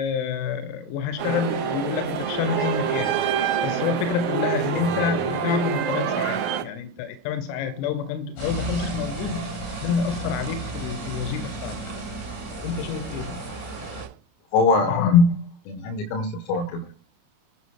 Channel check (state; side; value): late; right; 29 ms